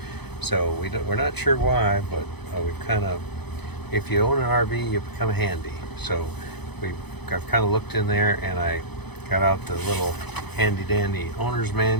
So we're not sure why, but we've kind of, if you own an RV, you become handy. So I've kind of looked in there, and I got out the little handy dandy owner's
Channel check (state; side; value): late; right; 0.98 ms